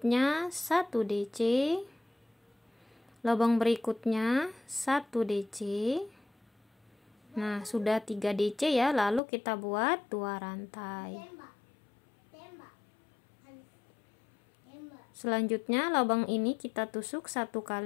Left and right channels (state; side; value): drops out; right; at 9.2 s